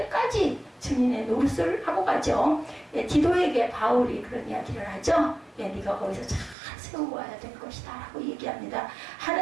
증인의 노릇을 하고 가죠. 예, 디도에게 바울이 그런 이야기를 하죠. 예, 네가 거기서 잘 세우고 와야 될 것이다 라고 얘기합니다.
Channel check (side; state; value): left; drops out; at 6.6 s